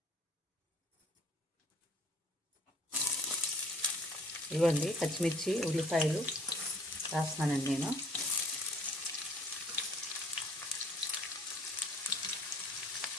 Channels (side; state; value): both; normal; correlation 0.55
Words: ఇవ్వండి పచ్చిమిర్చి, ఉల్లిపాయలు వేస్తున్నానండి నేను.